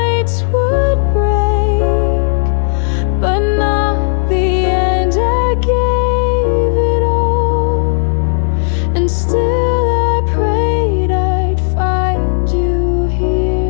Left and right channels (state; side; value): silent; right; digital silence